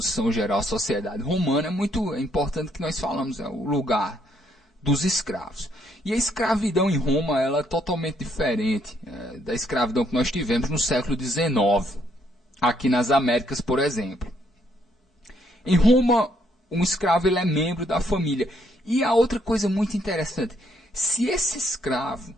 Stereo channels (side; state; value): both; normal; correlation 0.71